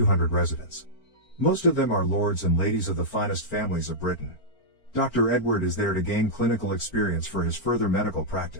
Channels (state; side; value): late; right; 4.4 ms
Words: residents. Most of them are lords and ladies of the finest families of Britain. Dr. Edward is there to gain clinical experience for his further medical